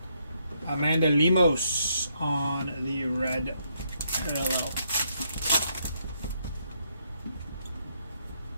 Amanda Lemos on the red parallel.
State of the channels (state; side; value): inverted; both; correlation -0.74